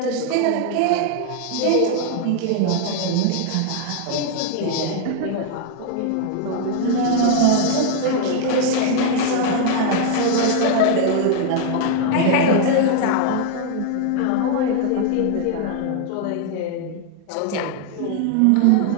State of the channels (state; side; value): different; both; correlation 0.00